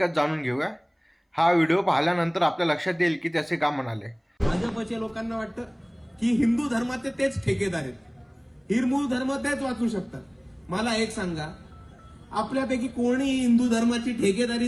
जाणून घेऊया. हा व्हिडिओ पाहिल्यानंतर आपल्या लक्षात येईल की त्याचे का म्हणाले. भाजपच्या लोकांना वाटतं की हिंदू धर्माचे तेच ठेकेदार आहेत, हिरमूळ धर्म तेच वाचू शकतात. मला एक सांगा, आपल्यापैकी कोणी हिंदू धर्माची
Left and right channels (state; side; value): identical; both; correlation 1.00